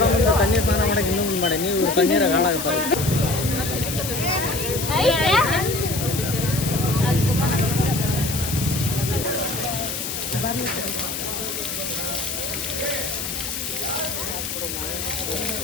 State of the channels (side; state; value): left; noise; hiss, 5 dB below the sound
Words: ಮುಂದೆ ತಣ್ಣೀರ್ ಸ್ನಾನ ಮಾಡಕ್ಕೆ ಇನ್ನೂ ಮುಂದೆ ಮಾಡಿ ನೀವು ತಣ್ಣೀರಾಗ ಹಾಳಾಗ್ತಾರೆ